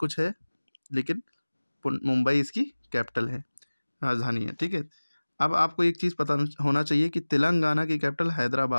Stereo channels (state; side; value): inverted; both; correlation -1.00